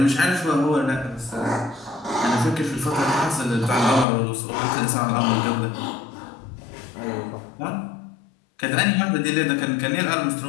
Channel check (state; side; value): drops out; right; at 4.0 s